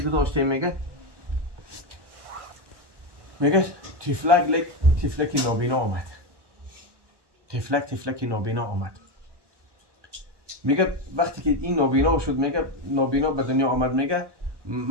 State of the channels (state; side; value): late; left; 1.1 ms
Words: گذاشتیم میگه تفلک نابینا آمد. تفلک نابینا آمد. میگه وقتی که این نابینا شد، میگه نابینا به دنیا آمد، میگه